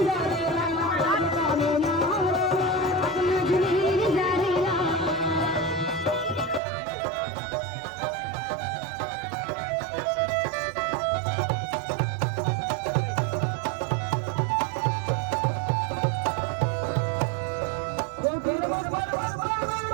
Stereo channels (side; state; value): left; drops out; at 6.6 s